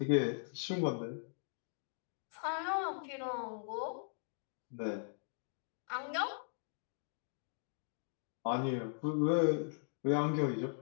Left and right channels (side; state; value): right; silent; digital silence